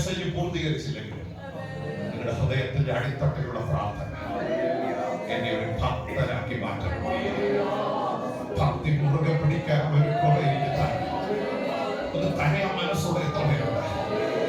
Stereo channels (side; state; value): both; identical; correlation 1.00